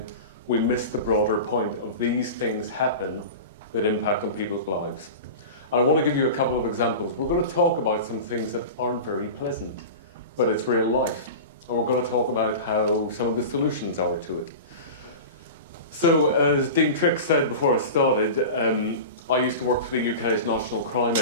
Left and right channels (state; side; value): inverted; both; correlation -0.30